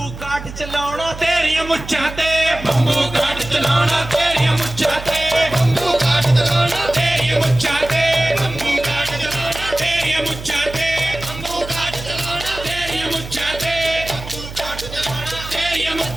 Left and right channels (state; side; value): noise; right; hum, 12 dB below the sound